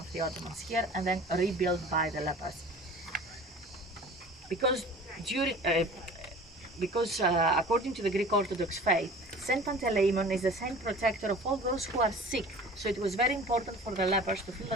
the Ottomans here and then rebuilt by the lepers. Because according to the Greek Orthodox faith, Saint Panteleimon is the saint protector of all those who are sick. So it was very important for the lepers to feel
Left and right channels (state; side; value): normal; both; correlation 0.43